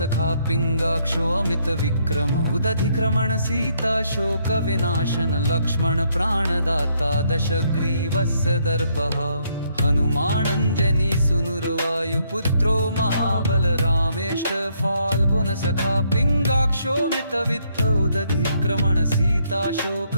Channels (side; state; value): both; inverted; correlation -0.72